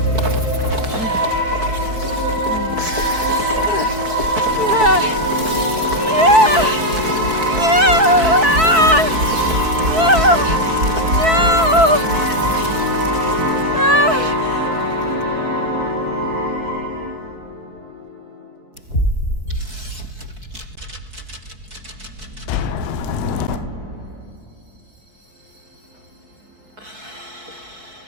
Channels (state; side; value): late; left; 4.6 ms